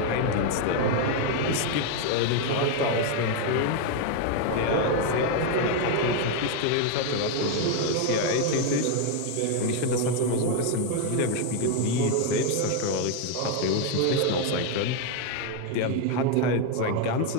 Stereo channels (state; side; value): different; both; correlation 0.01